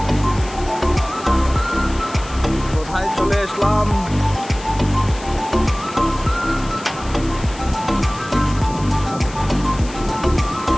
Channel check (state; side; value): noise; left; hiss, 17 dB below the sound